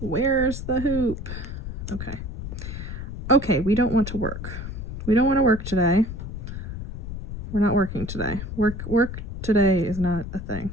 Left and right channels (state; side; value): noise; left; rumble, 7 dB below the sound